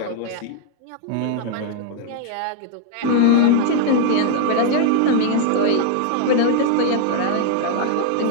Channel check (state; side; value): different; both; correlation 0.00